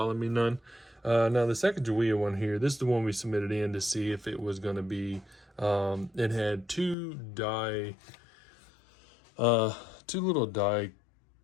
me none. Now the Sacagawea one here, this is the one we submitted in to see if it was going to be, it had two little die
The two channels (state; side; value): drops out; right; at 7.0 s